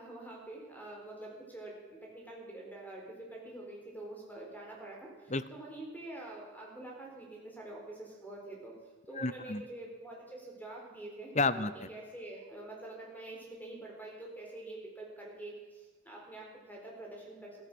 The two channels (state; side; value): normal; both; correlation 0.13